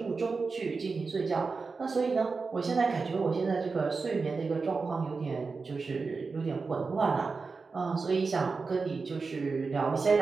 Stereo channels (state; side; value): quieter; left; 4.4 dB